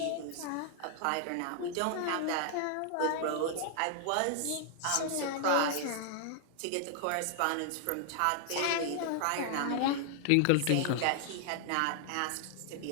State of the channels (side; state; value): both; different; correlation 0.00